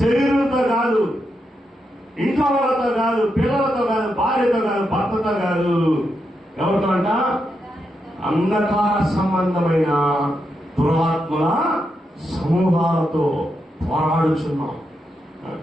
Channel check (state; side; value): normal; both; correlation 0.84